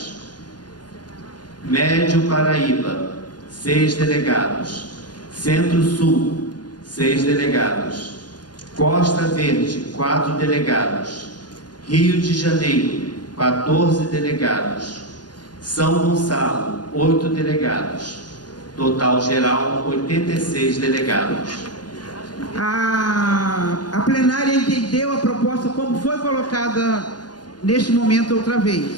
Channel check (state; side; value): late; right; 0.70 ms